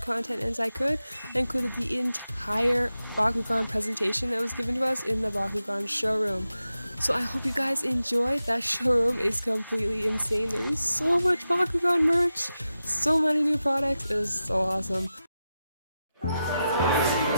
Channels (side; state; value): both; inverted; correlation -0.91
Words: as I could. I included the entire Bakugan presentation that was given to us in the Bakugan showroom. So I hope you guys enjoyed. That showroom is completely insane. There's so much Bakugan merch, so many new products. It was so awesome.